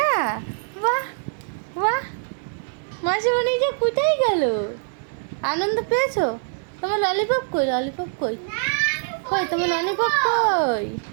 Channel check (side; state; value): left; silent; 63 dB below the other